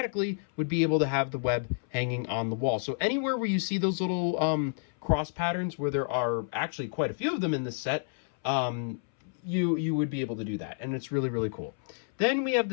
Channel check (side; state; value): right; silent; 58 dB below the other